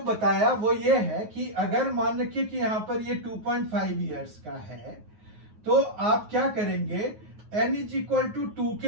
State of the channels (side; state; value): left; late; 9.5 ms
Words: बताया वो ये है कि अगर मान रखिए कि यहां पर ये 2.5 इयर्स का है तो आप क्या करेंगे, n इज इक्वल टू 2